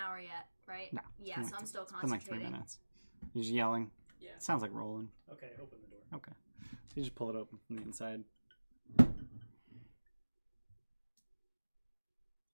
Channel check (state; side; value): inverted; both; correlation -1.00